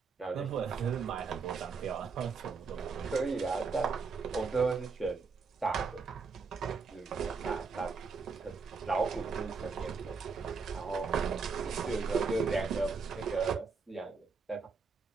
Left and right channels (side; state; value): left; quieter; 4.9 dB